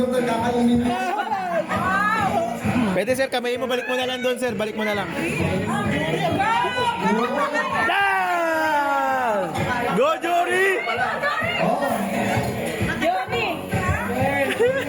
na kakainin mo. Pwede sir, kamay mo, balik mo na lang doon sir, balik mo na lang. Down! Go Jory!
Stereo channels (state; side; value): identical; both; correlation 1.00